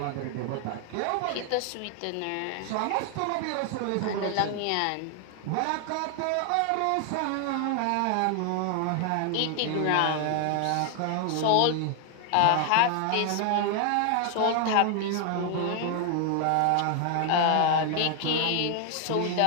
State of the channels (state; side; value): different; both; correlation 0.00